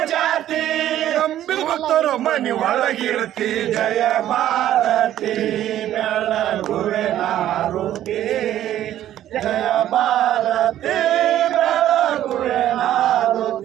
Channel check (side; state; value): left; quieter; 12.2 dB